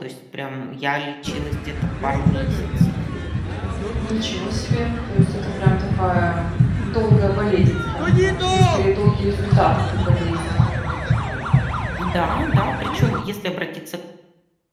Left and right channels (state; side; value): identical; both; correlation 1.00